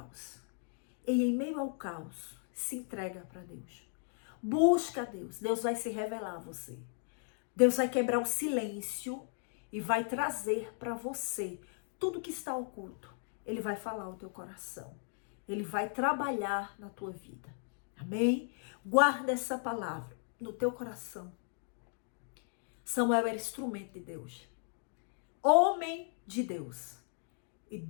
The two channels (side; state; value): right; silent; 54 dB below the other